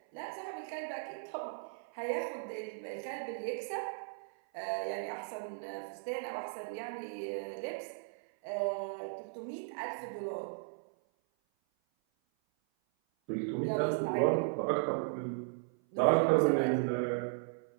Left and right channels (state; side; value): silent; left; 54 dB below the other